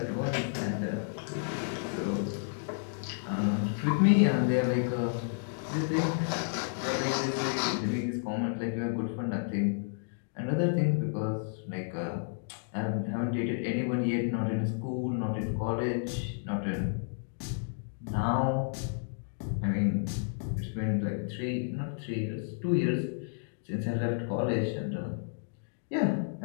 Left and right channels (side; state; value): right; silent; digital silence